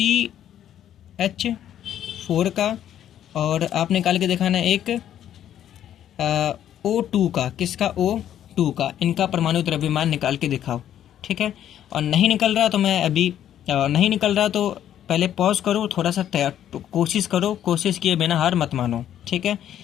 का, और आप निकाल के दिखाना एक O2 का। किसका, O2 का। इनका परमाणु द्रव्यमान निकाल के दिखाओ, ठीक है। और नहीं निकल रहा तो नहीं निकल रहा तो पहले पॉज करो, थोड़ा सा कोशिश करो, कोशिश किए बिना हार मत मानो, ठीक है।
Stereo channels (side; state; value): right; quieter; 10.8 dB